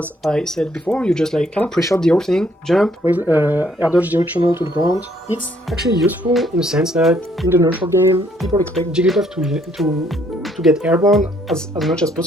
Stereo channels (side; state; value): both; normal; correlation 0.66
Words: I said before, you just like kind of pre-shot the whole thing, jump, air dodge directional to the ground. It's actually useful in the sense that in the neutral game, people expect Jigglypuff to get airborne as much as